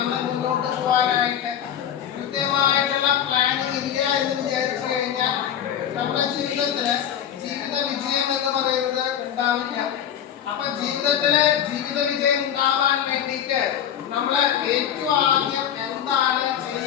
മുന്നോട്ട് പോകാനായിട്ട്. കൃത്യമായിട്ടുള്ള പ്ലാനിങ് ഇല്ല എന്ന് വിചാരിച്ചു കഴിഞ്ഞാൽ നമ്മുടെ ജീവിതത്തില് ജീവിത വിജയം എന്ന് പറയുന്നത് ഉണ്ടാവില്ല. അപ്പൊ ജീവിതത്തില് ജീവിത വിജയം ഉണ്ടാവാൻ വേണ്ടിയിട്ട് നമ്മള് ഏറ്റവും ആദ്യം എന്താണ്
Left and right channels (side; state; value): right; quieter; 9.6 dB